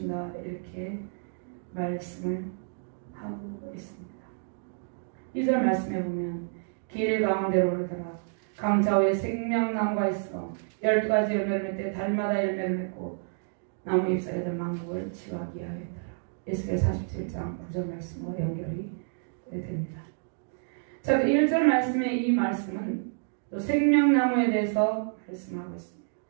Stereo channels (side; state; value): left; silent; digital silence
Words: 이렇게 말씀을 하고 있습니다. 2절 말씀해 보면 길 가운데로 흐르더라 강좌 위에 생명나무가 있어 12가지 열매를 맺되 달마다 열매를 맺고 나무 잎사귀들 만국을 치유하게 하였더라. 에스겔 47장 9절 말씀과 연결이 됩니다. 자, 1절 말씀의 이 말씀은 또 생명나무에 대해서 말씀하고 있습니다.